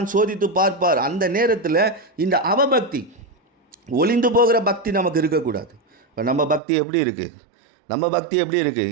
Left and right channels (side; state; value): left; drops out; at 6.6 s